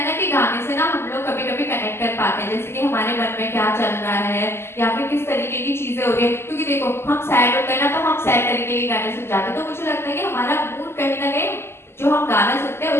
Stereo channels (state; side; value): late; right; 0.12 ms